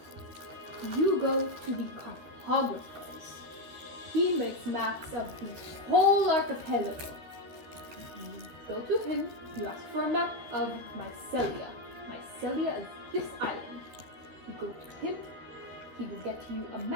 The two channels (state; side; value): late; left; 13 ms